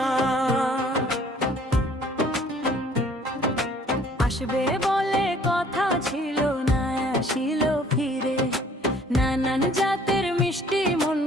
আসবে বলে কথা ছিল না, আসিল ফিরে। নানান জাতের মিষ্টি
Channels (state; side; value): normal; both; correlation 0.56